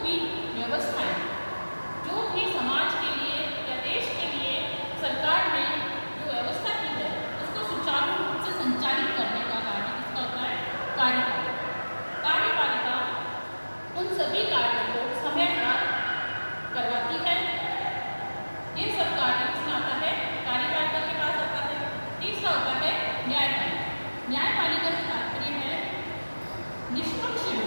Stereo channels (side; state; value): both; inverted; correlation -1.00